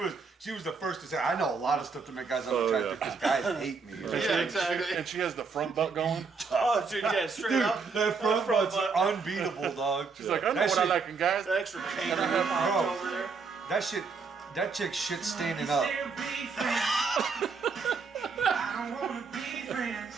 She was the first to say, I know a lot of stuff to make guys unattractive because guys hate me. Yeah, exactly. And she has the front butt going. Oh, dude, yeah, straight Dude, up. that front butt's unbeatable, dog. She's like, I know That what I shit- like in guys. The extra cane Bro, over there. that chick shit standing up.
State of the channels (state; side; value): quieter; left; 4.9 dB